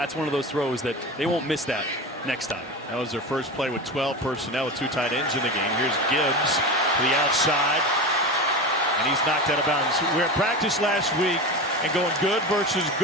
one of those throws that they won't miss that next time. That was their first play with 12 personnel with 2 tight ends in the game. Here's Gibbs to the outside, and he's knocked out of bounds. We were at practice last week and going good versus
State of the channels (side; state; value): both; normal; correlation 0.25